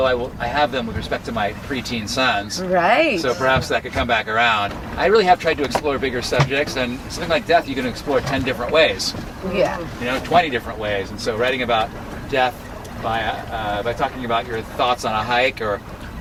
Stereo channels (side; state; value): both; identical; correlation 1.00